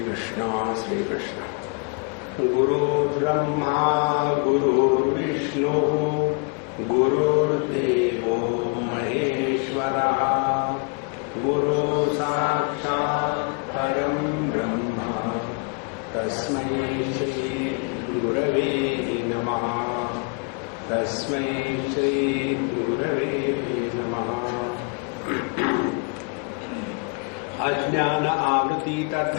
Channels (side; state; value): right; quieter; 34.7 dB